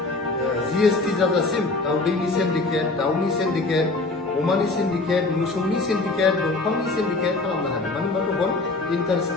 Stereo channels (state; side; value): quieter; right; 3.3 dB